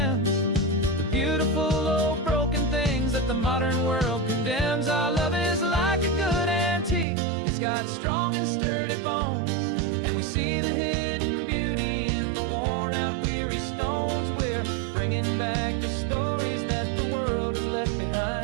the beautiful old broken things that the modern world condemns. Our love is like a good antique, it's got strong and sturdy bones. And we see the hidden beauty in the worn out weary stones. We're bringing back the stories that the world has left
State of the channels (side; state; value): left; drops out; at 7.1 s